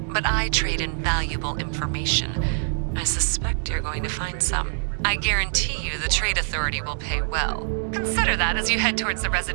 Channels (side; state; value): left; silent; digital silence